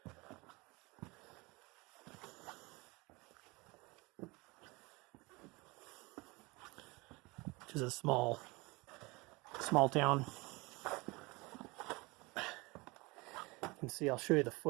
Which is a small town. You can see, I'll show you the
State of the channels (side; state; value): left; quieter; 24.9 dB